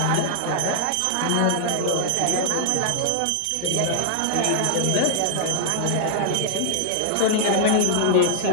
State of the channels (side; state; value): both; different; correlation 0.00